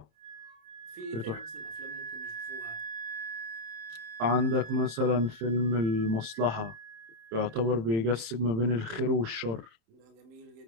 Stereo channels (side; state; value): left; late; 27 ms